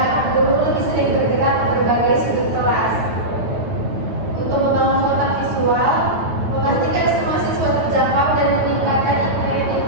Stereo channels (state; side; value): late; left; 9.2 ms